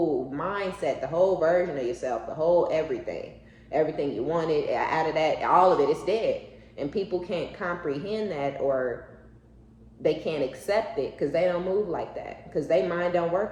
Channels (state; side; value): identical; both; correlation 1.00